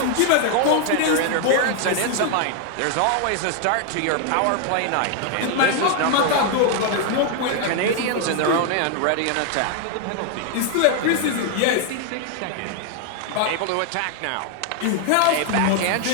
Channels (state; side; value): different; both; correlation 0.00